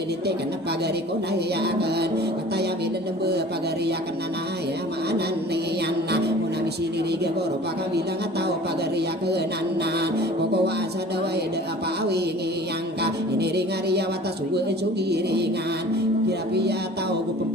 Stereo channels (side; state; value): both; normal; correlation 0.45